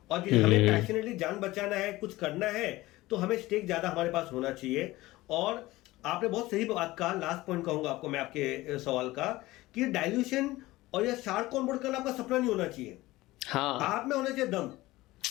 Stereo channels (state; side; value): quieter; right; 18.6 dB